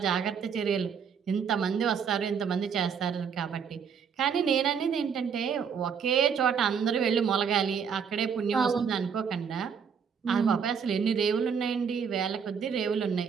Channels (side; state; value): left; quieter; 6.8 dB